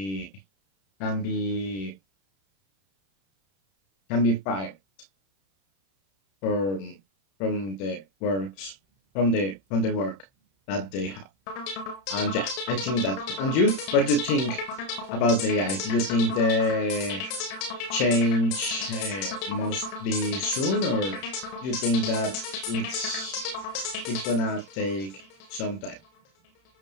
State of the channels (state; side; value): late; right; 31 ms